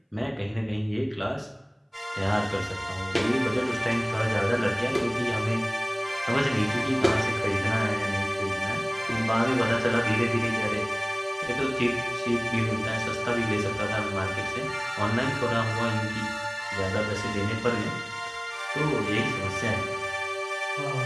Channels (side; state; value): both; identical; correlation 1.00